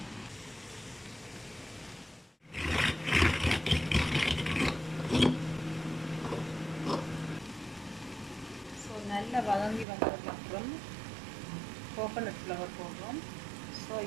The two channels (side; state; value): left; drops out; at 9.9 s